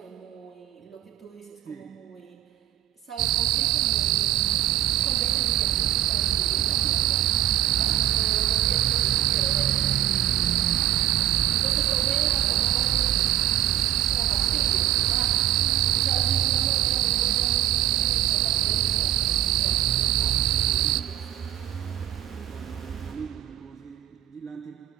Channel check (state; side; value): quieter; left; 13.1 dB